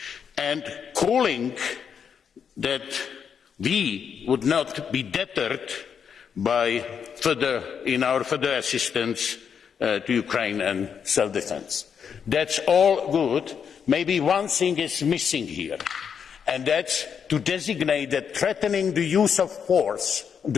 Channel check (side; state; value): right; quieter; 7.2 dB